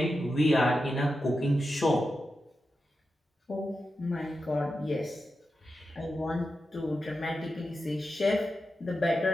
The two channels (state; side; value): normal; both; correlation 0.90